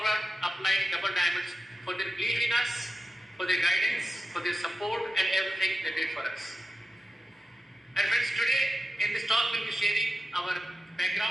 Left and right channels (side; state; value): both; normal; correlation 0.91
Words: upline Double Diamonds for their belief in us, for their guidance, for their support and everything they did for us. And friends, today in this talk we'll be sharing our